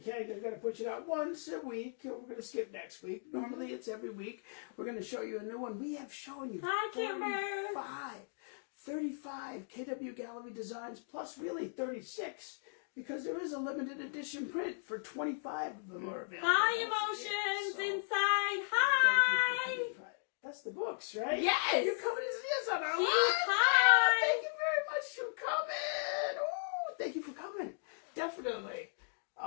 because we're going to push it out once a week. We're going to skip next week. Normally, it's every week. We're going to show you a new one. We have shown you 35 KW Gallery designs, plus really 36, because there is a limited edition print for 25 of them are available. Hi, emotions inside. Hi. That's the books, right? Yes. You're coming to see us on our live. Hi. Thank you very much for coming. Ooh, thank you for coming. Definitely.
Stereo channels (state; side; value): silent; right; digital silence